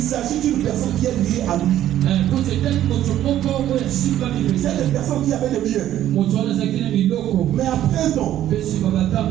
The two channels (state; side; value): quieter; left; 12.2 dB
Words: d'une personne qui est liée à lui. C'est une personne qui avait le bien. Mais après un temps,